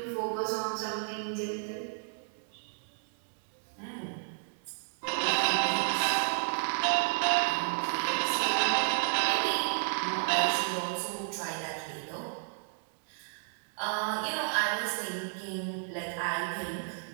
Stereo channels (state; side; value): silent; left; 56 dB below the other